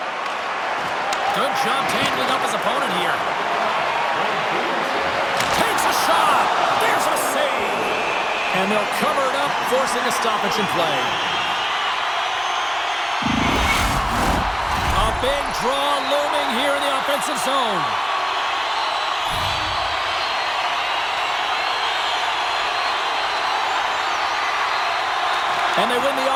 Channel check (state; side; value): identical; both; correlation 1.00